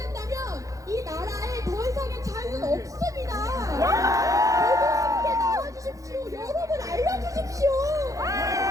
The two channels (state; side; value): late; left; 0.16 ms